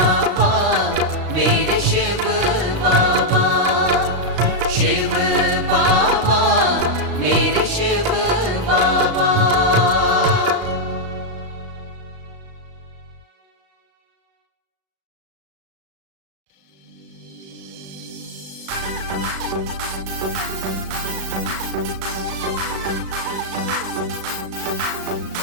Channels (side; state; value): left; late; 36 ms